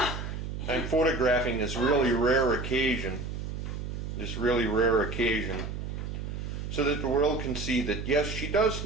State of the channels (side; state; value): right; noise; hum, 6 dB below the sound